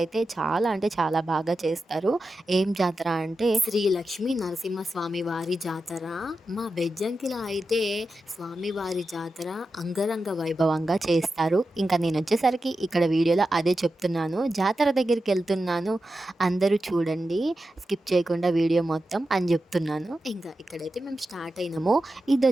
చాలా అంటే చాలా బాగా చేస్తారు. ఏం జాతర అంటే శ్రీ లక్ష్మీ నరసింహస్వామి వారి జాతర. మా బెజ్జంకిలో అయితే స్వామివారి జాతర అంగరంగ వైభవంగా చేస్తారు. ఇంకా నేనొచ్చేసరికి ఇక్కడ వీడియోలో అదే చెప్తున్నాను. జాతర దగ్గరికెళ్తున్నాను. అందరూ చూడండి, స్కిప్ చేయకుండా వీడియో మొత్తం అని చెప్తున్నాను. ఇంకా ఇక్కడైతే మేము స్టార్ట్ అయినాము.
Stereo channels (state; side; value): normal; both; correlation 0.91